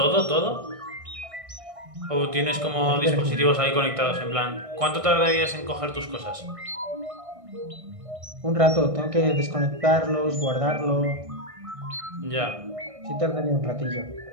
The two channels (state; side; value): late; left; 1.6 ms